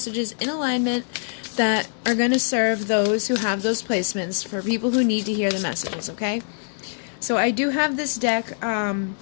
in alignment that are going to serve those who have those placements, for people who need to hear the messages, okay? So I do have this deck,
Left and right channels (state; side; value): silent; right; digital silence